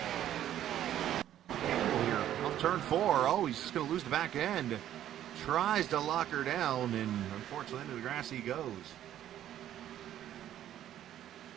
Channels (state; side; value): quieter; left; 11.6 dB